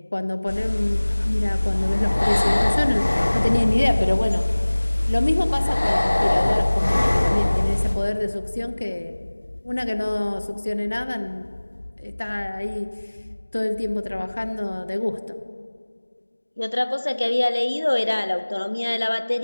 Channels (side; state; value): both; inverted; correlation -1.00